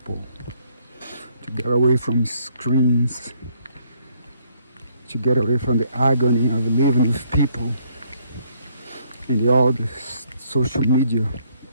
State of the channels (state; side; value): inverted; both; correlation -0.68